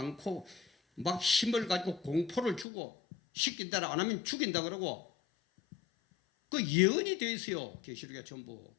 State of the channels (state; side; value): drops out; right; at 2.7 s